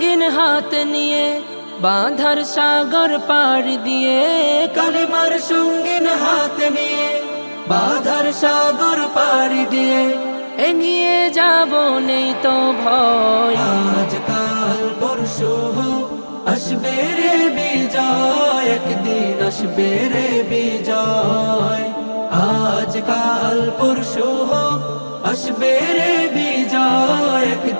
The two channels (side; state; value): both; inverted; correlation -1.00